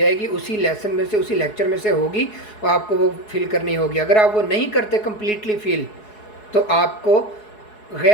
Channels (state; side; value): late; right; 4.7 ms